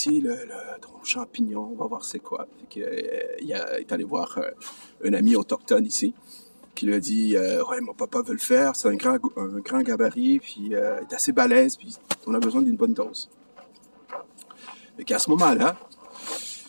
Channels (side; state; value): both; inverted; correlation -1.00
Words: le tronc champignon. On va voir c'est quoi. Fait que, est allé voir un ami autochtone ici qui lui a dit, ouais, mon papa veut le faire. C'est un grand gabarit. Puis il est assez balèze. Puis on a besoin d'une bonne dose. Fait qu'à ce moment-là,